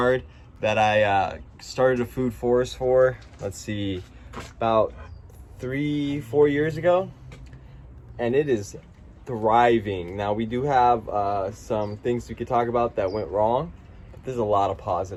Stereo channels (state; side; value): identical; both; correlation 1.00